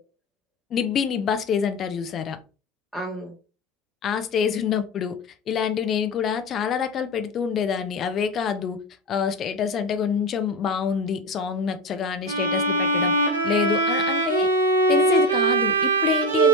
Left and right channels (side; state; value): both; normal; correlation 0.19